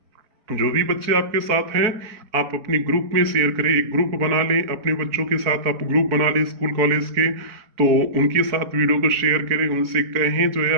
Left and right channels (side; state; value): left; late; 4.5 ms